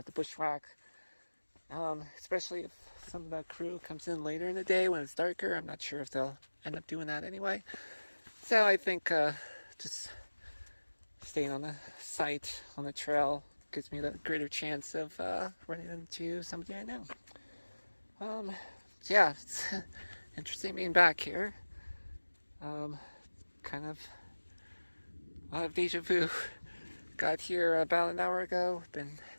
to bushwhack. Especially if some of the crew comes in later in the day when it's darker. I'm not sure if they'll end up doing that anyway. So I think just staying on the site, on the trail, gives me the greater chance of running into somebody I know. Yeah, it's interesting being back here. Kind of a lot of deja vu. Got here about an hour ago, been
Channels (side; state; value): both; inverted; correlation -1.00